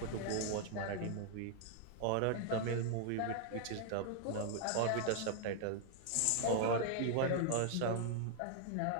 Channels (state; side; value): different; both; correlation -0.01